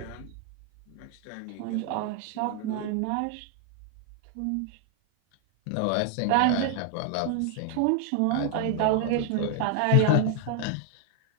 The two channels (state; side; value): different; both; correlation 0.00